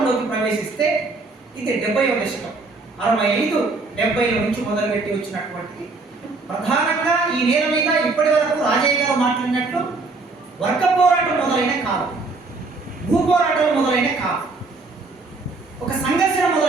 ప్రవేశిస్తే ఇది 70వ దశకం, 65, 70ల నుంచి మొదలుపెట్టి వచ్చినటువంటి, ప్రధానంగా ఈ నేల మీద ఇప్పటి వరకు రాజయ్య గారు మాట్లాడినట్లు వర్గ పోరాటం మొదలైన కాదు, భూ పోరాటాలు మొదలైన కాదు, ఒక సంఘర్షణ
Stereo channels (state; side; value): quieter; left; 3.7 dB